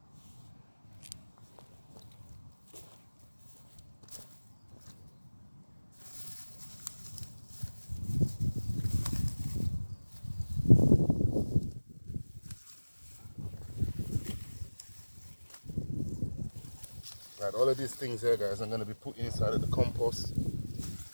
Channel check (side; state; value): both; inverted; correlation -1.00